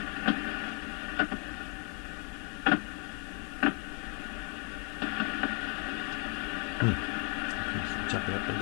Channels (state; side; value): quieter; right; 37.9 dB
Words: Jumping up and